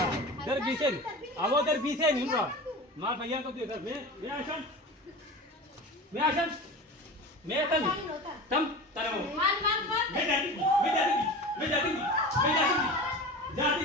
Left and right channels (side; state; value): both; normal; correlation 0.32